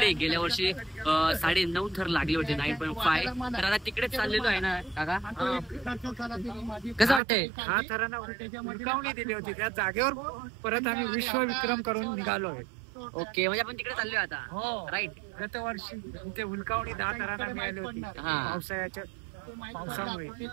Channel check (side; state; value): left; drops out; at 7.2 s